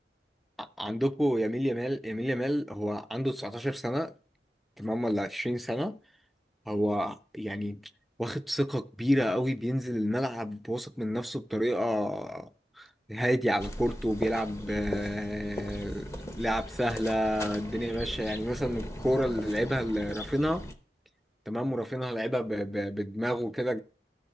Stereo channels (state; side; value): normal; both; correlation 0.94